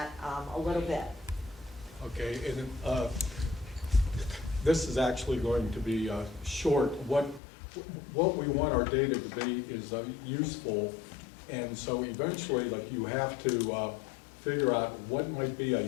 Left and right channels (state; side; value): drops out; right; at 7.4 s